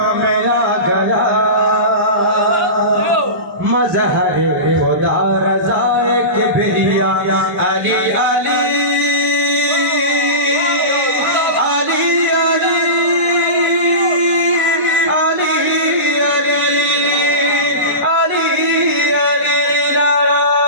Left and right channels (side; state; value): left; late; 1.5 ms